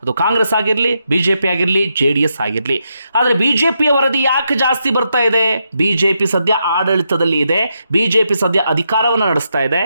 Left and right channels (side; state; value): both; inverted; correlation -0.82